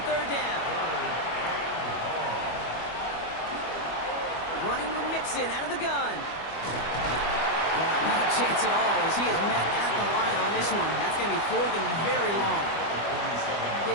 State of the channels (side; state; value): right; late; 25 ms